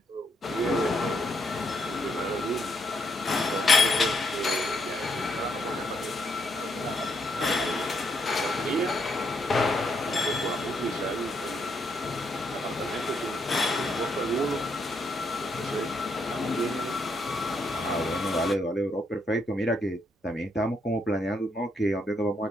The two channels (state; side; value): normal; both; correlation 0.76